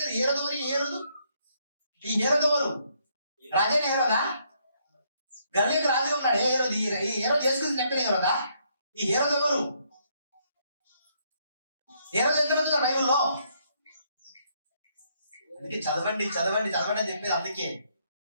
హేరోదు ఈ హేరోదు ఎవరు? రాజైన హేరోదా? గలిలయకు రాజుగా ఉన్నాడు. ఈ హేరోదు యేసుక్రీస్తు చెప్పిన హేరోదా? ఈ హేరోదు ఎవరు? హేరోదు ఎంతమంది ఉన్నారు బైబిల్లో? అందుకే చదవండి అని చెప్పేది. అందుకే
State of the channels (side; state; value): both; inverted; correlation -0.71